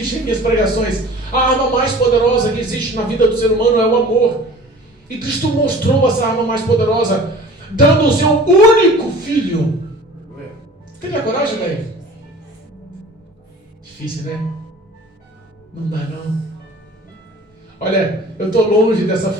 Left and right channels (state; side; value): normal; both; correlation 0.44